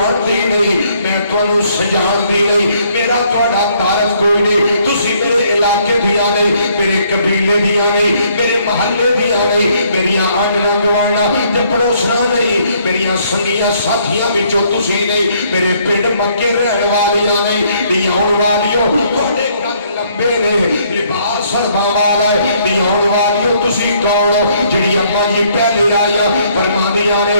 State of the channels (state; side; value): inverted; both; correlation -0.67